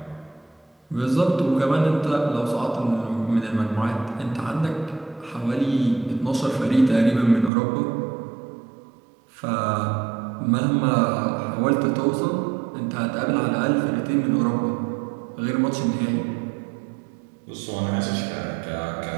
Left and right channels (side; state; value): left; drops out; at 7.5 s